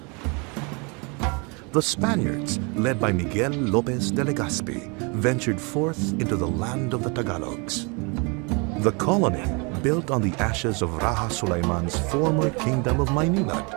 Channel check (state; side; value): quieter; left; 31.5 dB